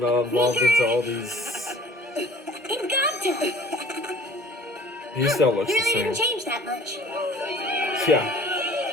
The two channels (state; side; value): normal; both; correlation 0.50